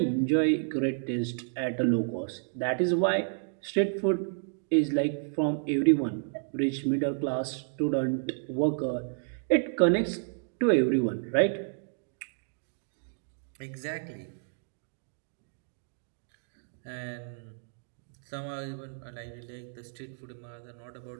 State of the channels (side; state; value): left; silent; digital silence